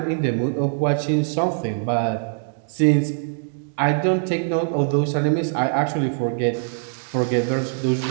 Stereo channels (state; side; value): silent; left; digital silence